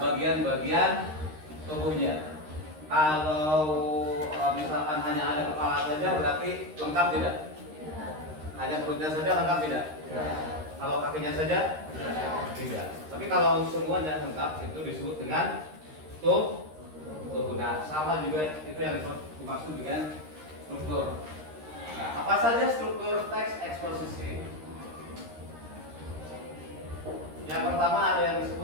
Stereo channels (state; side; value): late; left; 13 ms